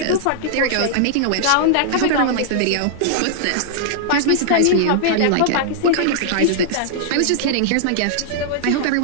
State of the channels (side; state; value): both; different; correlation -0.01